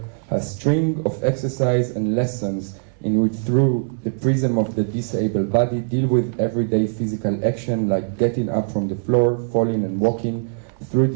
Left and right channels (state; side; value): silent; left; 65 dB below the other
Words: a string of exercise and lessons in which, through the prism of the disabled body, deal with everyday physical action like getting up from the floor, falling and walking. Through